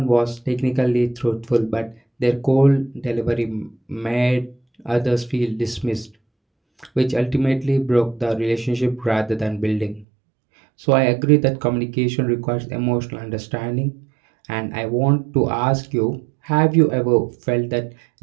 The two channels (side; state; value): left; drops out; at 10.1 s